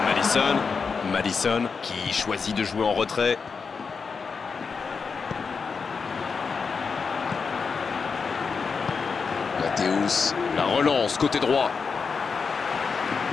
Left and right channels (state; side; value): quieter; right; 5.3 dB